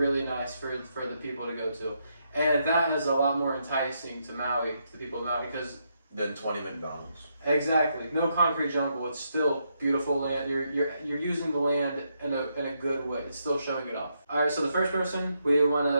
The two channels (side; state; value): both; inverted; correlation -0.79